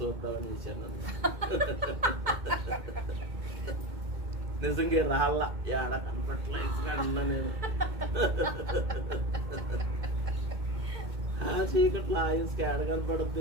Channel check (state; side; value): late; left; 2.2 ms